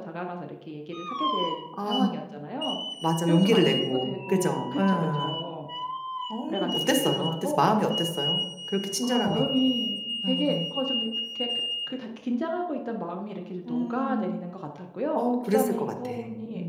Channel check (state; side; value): identical; both; correlation 1.00